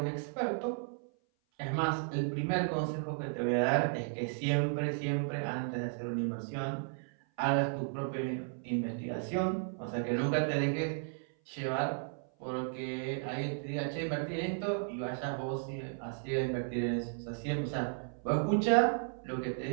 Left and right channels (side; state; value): left; silent; 55 dB below the other